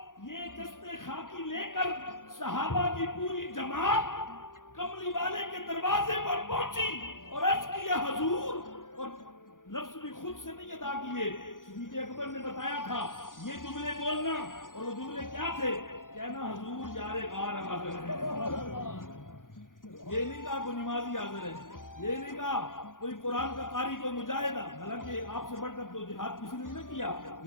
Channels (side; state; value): right; late; 0.89 ms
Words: یہ جسد خاکی لے کر صحابہ کی پوری جماعت کملی والے کے دروازے پر پہنچی اور عرض کیا حضور، اور لفظ بھی خود سے نہیں ادا کیے. صدیق اکبر نے بتایا تھا یہ جملے بولنا، اور وہ جملے کیا تھے؟ کہنا حضور یار غار حاضر ہے. یہ نہیں کہا کوئی نمازی حاضر ہے، یہ نہیں کہا کوئی قرآن کا قاری، کوئی مجاہد. حالانکہ آپ سے بڑھ کر تو جہاد کسی نے نہیں کیا،